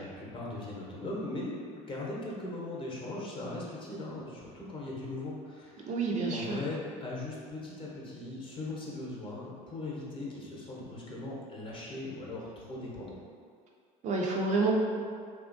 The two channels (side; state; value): both; normal; correlation 0.45